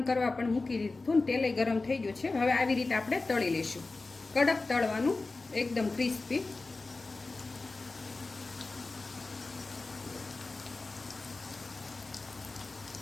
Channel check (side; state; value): right; quieter; 3.5 dB